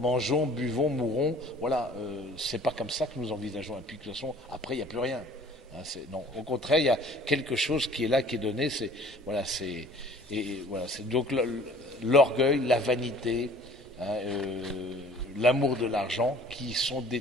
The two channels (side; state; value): both; normal; correlation 0.50